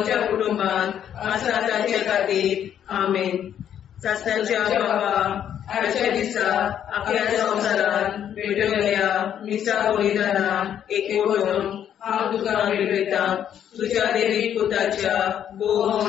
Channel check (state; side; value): quieter; right; 9.7 dB